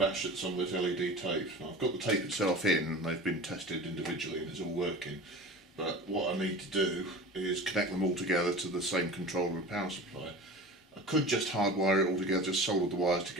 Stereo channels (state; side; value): normal; both; correlation 0.36